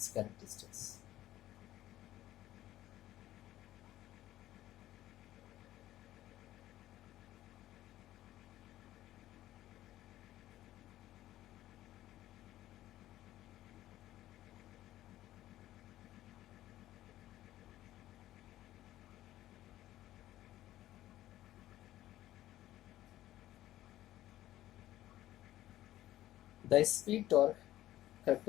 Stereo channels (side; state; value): right; quieter; 14.2 dB